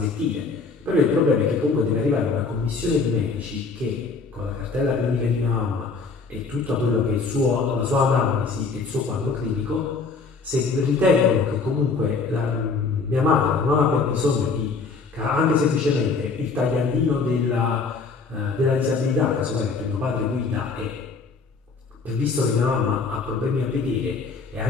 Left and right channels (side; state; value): right; quieter; 4.5 dB